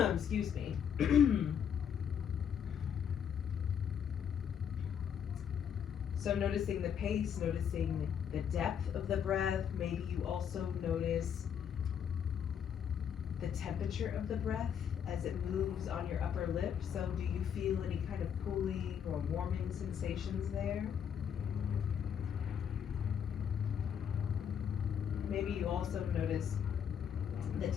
Excuse me. So noticing the pace, noticing the depth of the breath, maybe you also notice the temperature of the breath as it moves on your upper lip. So do you feel any kind of cooling or warming sensations there? Maybe you also notice the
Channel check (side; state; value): right; quieter; 8.2 dB